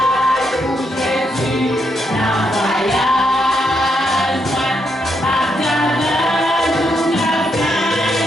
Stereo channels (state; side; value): normal; both; correlation 0.79